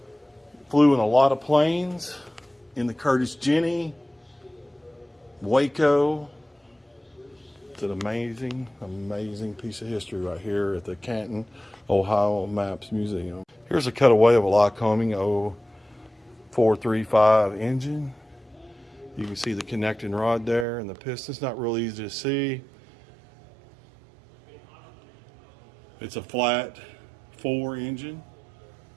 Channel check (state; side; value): drops out; left; at 20.7 s